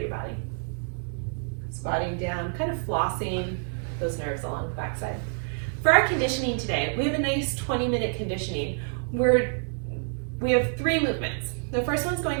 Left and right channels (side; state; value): left; silent; 60 dB below the other